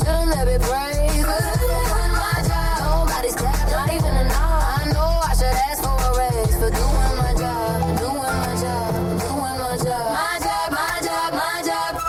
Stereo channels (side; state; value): both; identical; correlation 1.00